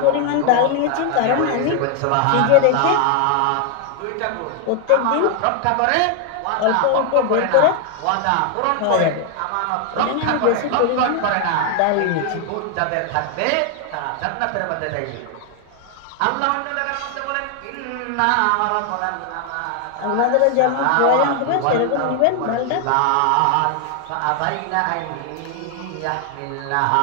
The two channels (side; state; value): both; different; correlation 0.00